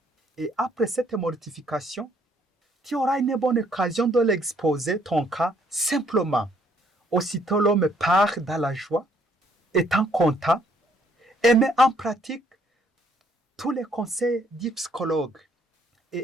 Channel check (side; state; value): both; normal; correlation 0.66